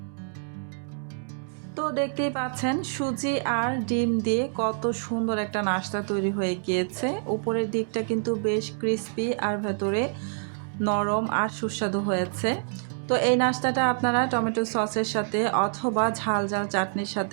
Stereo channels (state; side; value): silent; left; digital silence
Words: তো দেখতেই পাচ্ছেন সুজি আর ডিম দিয়ে কত সুন্দর একটা নাস্তা তৈরি হয়ে গিয়েছে। উপরের দিকটা কিন্তু বেশ ক্রিস্পি আর ভেতরে নরম আর সুস্বাদু হয়েছে। তো এই নাস্তাটা আপনারা টমেটো সসের সাথে অথবা ঝাল ঝাল চাটনির